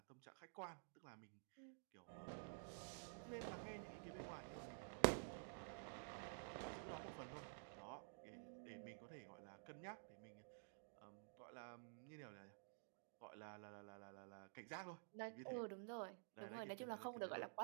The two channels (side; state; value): left; silent; digital silence